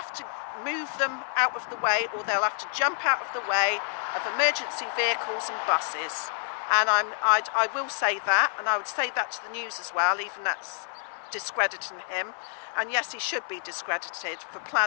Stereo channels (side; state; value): right; silent; digital silence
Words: to move them out of the way, or they'll have to jump out of the way of emergency vehicles and buses. And I will say that, and I would say that to the news as well, even that's discrediting him. And yes, he should be discredited for